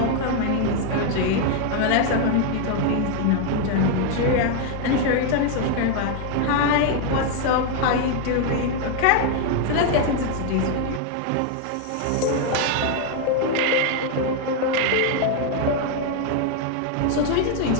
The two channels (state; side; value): different; both; correlation 0.00